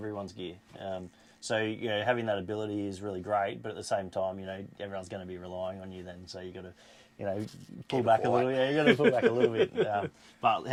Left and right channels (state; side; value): identical; both; correlation 1.00